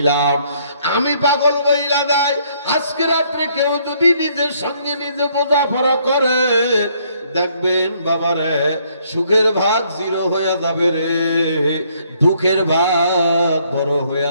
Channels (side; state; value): both; inverted; correlation -0.67